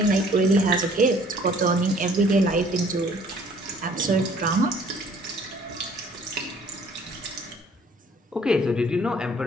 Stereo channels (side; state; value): both; normal; correlation 0.56